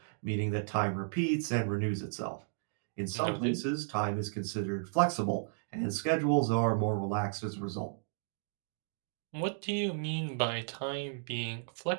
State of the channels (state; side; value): silent; left; digital silence